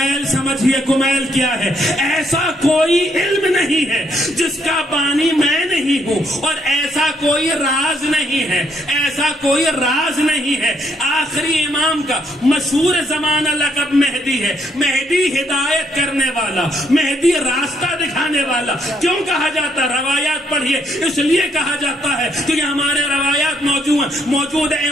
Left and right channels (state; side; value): normal; both; correlation 0.72